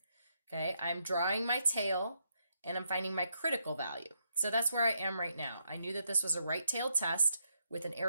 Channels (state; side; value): inverted; both; correlation -0.78